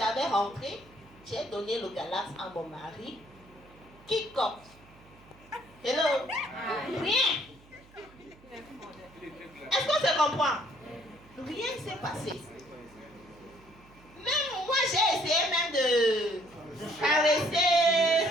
rentré, j'ai donné le Galax à mon mari. Kick-off. Hello? Rien. Est-ce qu'on se comprend? Rien ne s'est passé. Même moi, j'ai essayé même de caresser.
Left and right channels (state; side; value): noise; right; hum, 25 dB below the sound